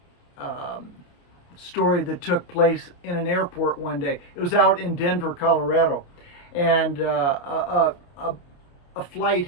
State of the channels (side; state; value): right; late; 29 ms